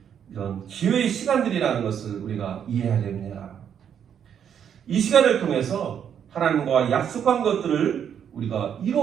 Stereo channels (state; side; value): quieter; left; 8.5 dB